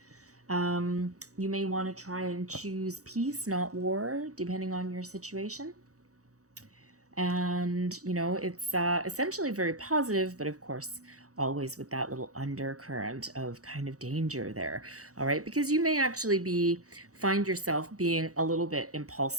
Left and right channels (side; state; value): left; late; 0.66 ms